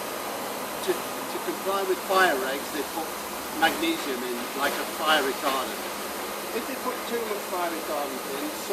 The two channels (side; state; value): both; identical; correlation 1.00